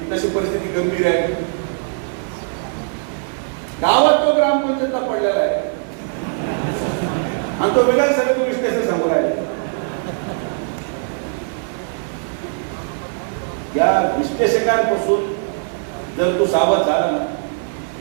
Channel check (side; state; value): left; silent; digital silence